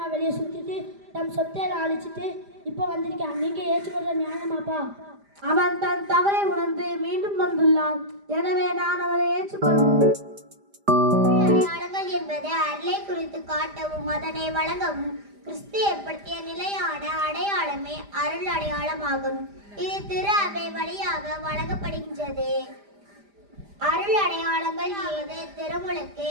வெளியே சுற்றிட்டு தம் சொத்தையில அழிச்சிட்டு இப்போ வந்திருக்கான். நீங்கள் ஏற்றுக்கொள்ள நியாயமாப்பா? அவன் தன் தவறை உணர்ந்து மீண்டும் வந்துள்ளான். எனவே நான் அவனை ஏற்றுக்கொள்வேன். அடையாளங்கள் என்பது அருளை குறித்து காட்டவும் அதனை வழங்கவும் கிறிஸ்து ஏற்படுத்திய நிலையான அடையாளமே அருள் அடையாளமாகும். இது திரு அவை வழியாக வழங்கப்படுகின்றது. அருள் அடையாளங்கள் ஏது? திருமுழுக்கு,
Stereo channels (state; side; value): late; left; 5.0 ms